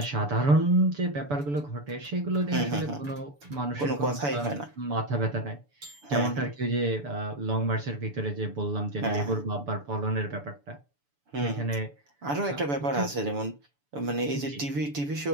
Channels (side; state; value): left; late; 6.9 ms